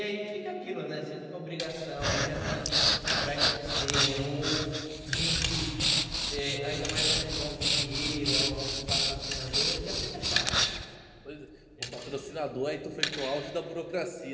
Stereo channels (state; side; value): identical; both; correlation 1.00